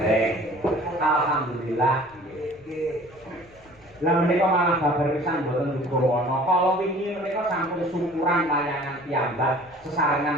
Alhamdulillah. Lah menika malah babar pisan mboten dugawana. Kala wingi menika sampun syukuran layangan piyambak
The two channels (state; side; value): noise; left; rumble, 27 dB below the sound